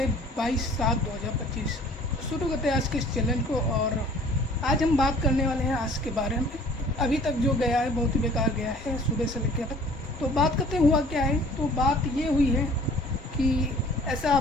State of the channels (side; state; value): both; normal; correlation 0.51